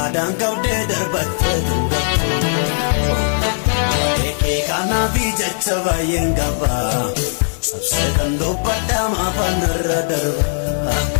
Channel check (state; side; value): silent; right; digital silence